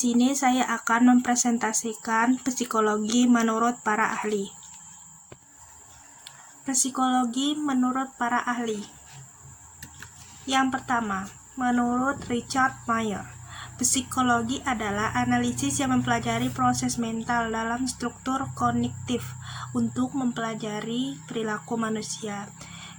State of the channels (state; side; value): identical; both; correlation 1.00